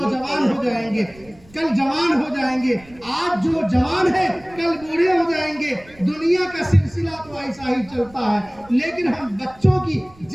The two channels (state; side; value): noise; right; rumble, 25 dB below the sound